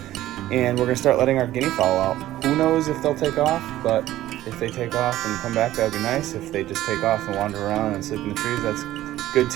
and we're gonna start letting our guinea fowl out. Who knows if they'll take off, but if they take off and come back, that would be nice. If they just take off and wander around and sleep in the trees, that's good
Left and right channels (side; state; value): left; quieter; 14.5 dB